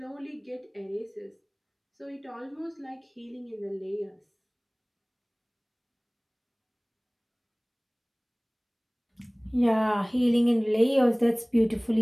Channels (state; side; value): identical; both; correlation 1.00